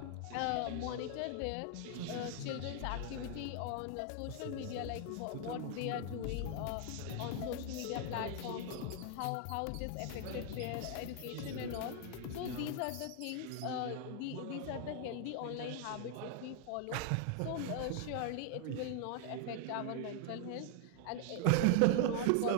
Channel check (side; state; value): both; different; correlation 0.00